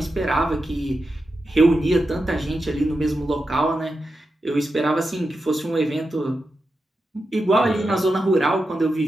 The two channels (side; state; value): both; normal; correlation 0.89